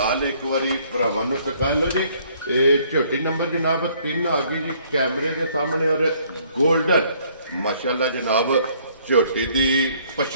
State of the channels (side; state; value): both; inverted; correlation -0.63